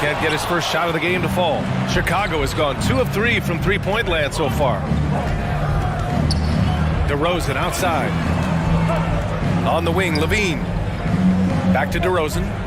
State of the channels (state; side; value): identical; both; correlation 1.00